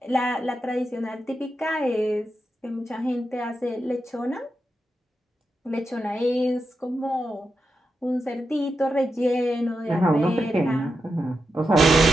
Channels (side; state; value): both; normal; correlation 0.87